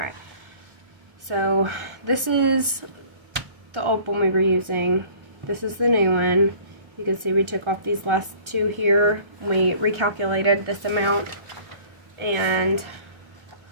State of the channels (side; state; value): left; late; 1.3 ms